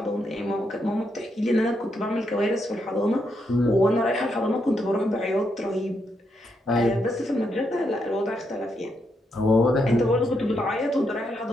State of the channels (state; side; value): normal; both; correlation 0.80